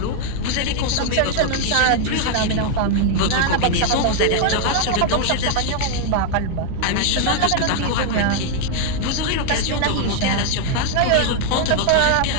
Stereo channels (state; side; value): different; both; correlation 0.00